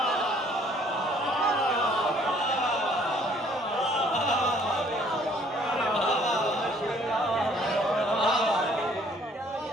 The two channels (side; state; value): both; normal; correlation 0.60